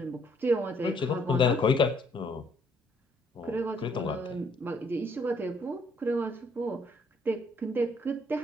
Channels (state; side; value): normal; both; correlation 0.66